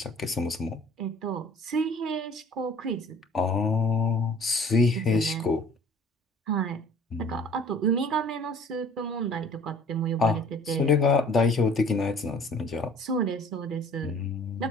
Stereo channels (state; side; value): normal; both; correlation 0.51